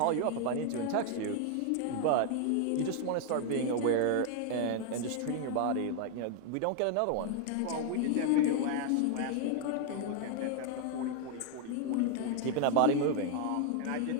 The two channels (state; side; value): different; both; correlation 0.00